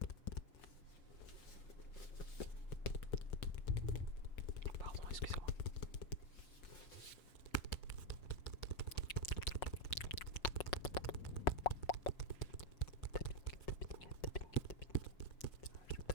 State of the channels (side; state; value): right; late; 5.6 ms